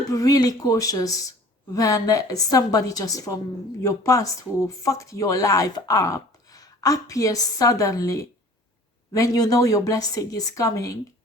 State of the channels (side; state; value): both; normal; correlation 0.47